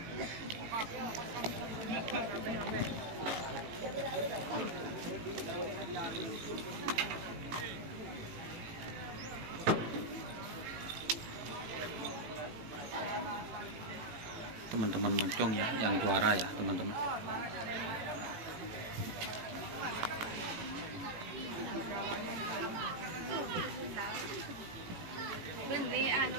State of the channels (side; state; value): left; late; 18 ms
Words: teman-teman moncong ya yang juara ya teman-teman.